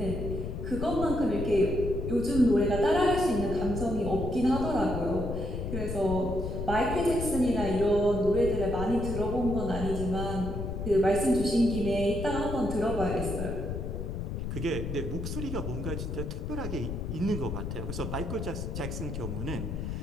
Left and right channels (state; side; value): noise; left; rumble, 4 dB below the sound